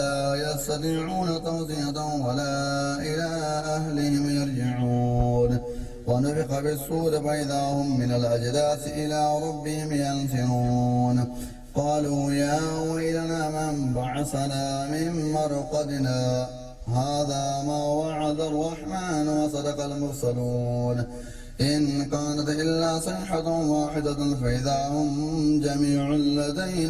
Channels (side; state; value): both; identical; correlation 1.00